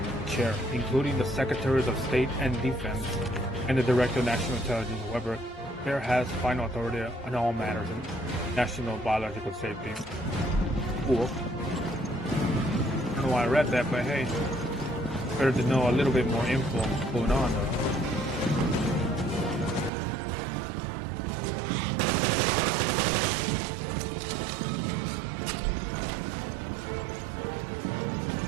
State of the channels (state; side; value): drops out; left; at 19.9 s